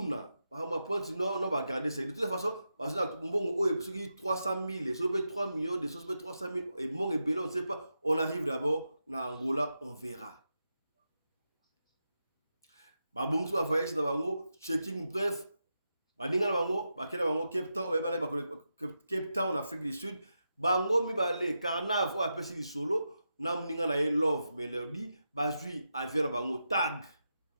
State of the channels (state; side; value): inverted; both; correlation -0.88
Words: ba pointe non ba garder ça de toute façon parce que mbongo oyo soki 300 000 soki 3 millions de soki 300 000 et mon et belon on ne sait pas, on arrive d'abord na Angola on verra ba bongo ba voyage na bango checking bref ba ninga na bango ba kena bango Cape Town ba bala ba Cape Town en Afrique du Sud bango mi balé Carnaval a pesi di solo na mninga na ye Love Melody bazui avion na bango tag